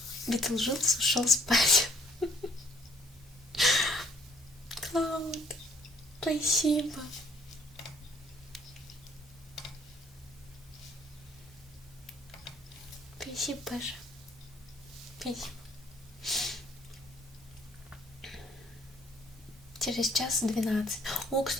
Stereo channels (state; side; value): normal; both; correlation 0.61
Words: Битлджус ушел спать. Клауд, спасибо. Спасибо, Паша. Спасибо. Через час 12. О,